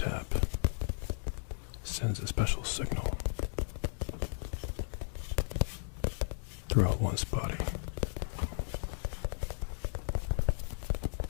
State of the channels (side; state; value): right; silent; digital silence